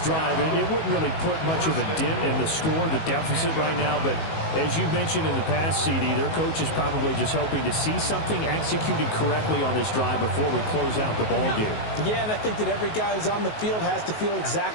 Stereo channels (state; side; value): late; right; 19 ms